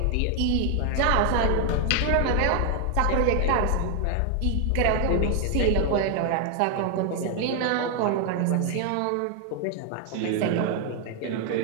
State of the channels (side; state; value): both; different; correlation 0.00